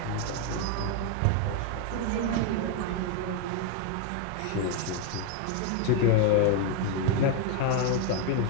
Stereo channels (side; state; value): both; different; correlation 0.01